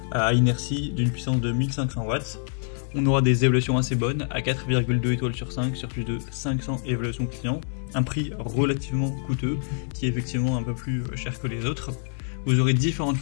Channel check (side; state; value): right; silent; digital silence